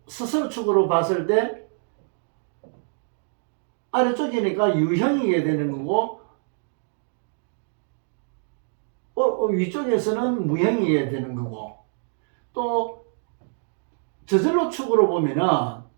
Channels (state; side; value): silent; left; 62 dB below the other